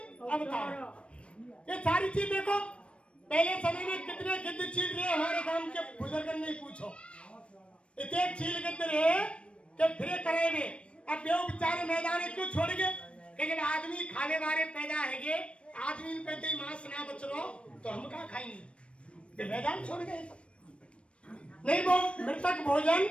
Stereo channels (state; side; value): late; right; 0.060 ms